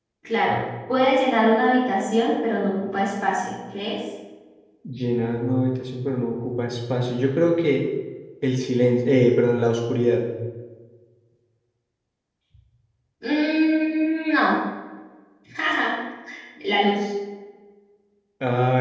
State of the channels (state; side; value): identical; both; correlation 1.00